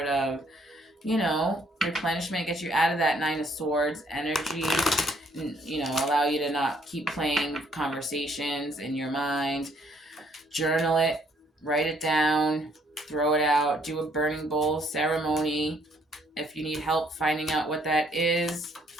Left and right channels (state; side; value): normal; both; correlation 0.66